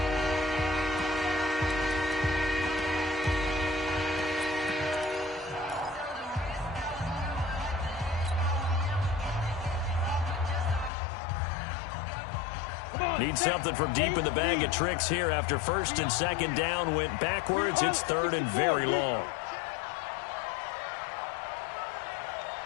Need something from deep in the bag of tricks here after 1st and 2nd down went backwards. It's 3rd and very long.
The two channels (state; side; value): drops out; right; at 10.9 s